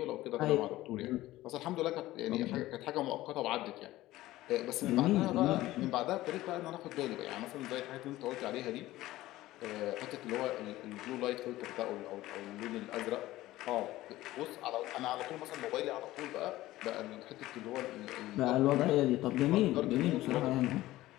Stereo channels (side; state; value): right; quieter; 16.5 dB